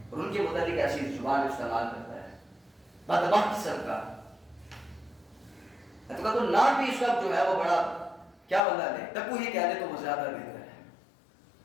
اور ان کے متعلق ایسی زبان استعمال کرتا ہے بدبخت قسم کا. تو کہا تو نام بھی اس وقت جو ہے وہ بڑا کیا بندہ دے، ٹپو ہی کہہ دے تو وہ زیادہ بہتر ہے.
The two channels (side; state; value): right; drops out; at 8.6 s